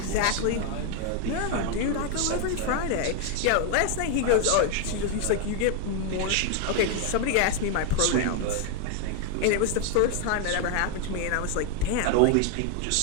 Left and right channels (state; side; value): different; both; correlation 0.01